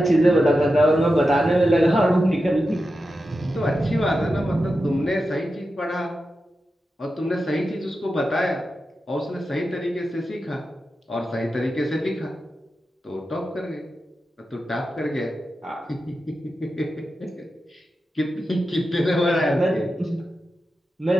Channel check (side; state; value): both; normal; correlation 0.90